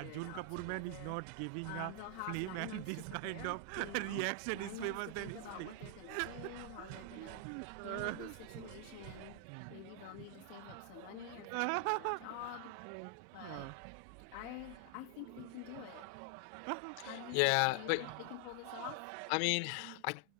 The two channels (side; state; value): both; different; correlation 0.00